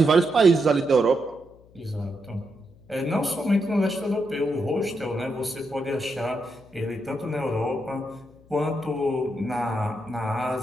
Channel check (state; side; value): noise; left; hum, 26 dB below the sound